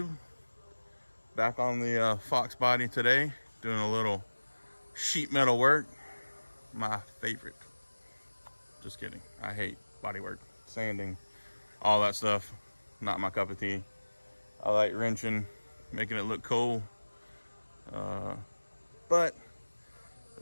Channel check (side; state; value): both; inverted; correlation -1.00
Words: Back on the Fox body today, doing a little sheet metal work. My favorite. Just kidding. I hate body work, sanding, all that stuff. Not my cup of tea. I like wrenching, making it look cool. But